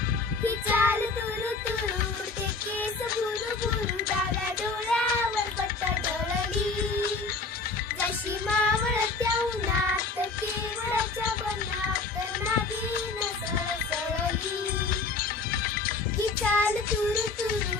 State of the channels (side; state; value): right; quieter; 4.1 dB